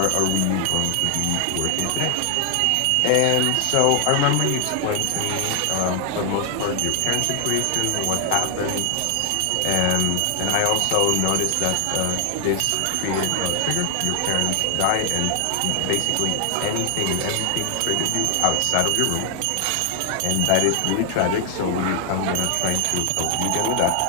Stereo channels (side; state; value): both; different; correlation 0.00